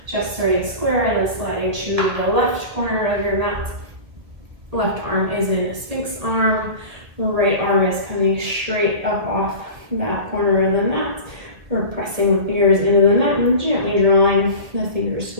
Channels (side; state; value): left; late; 1.7 ms